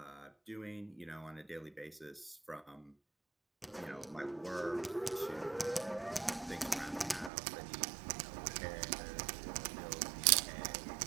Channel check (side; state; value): left; drops out; at 7.3 s